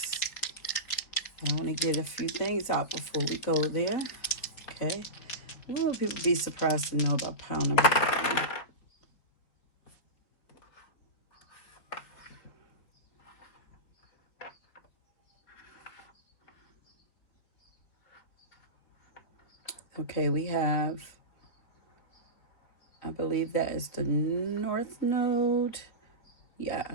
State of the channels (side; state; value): right; late; 4.6 ms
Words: I want to get a few things out before we go there. Okay. What will people be surprised to know about pile number one? Okay, we have, I believe that is the North Node.